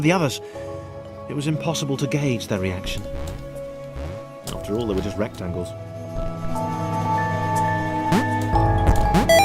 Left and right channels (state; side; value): identical; both; correlation 1.00